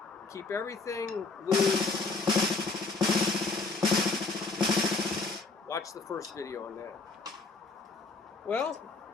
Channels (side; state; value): right; quieter; 3.9 dB